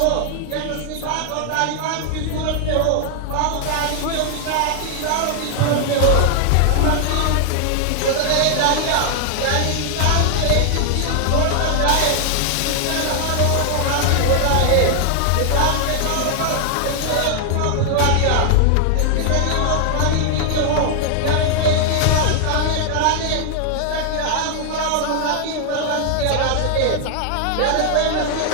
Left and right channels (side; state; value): both; different; correlation 0.00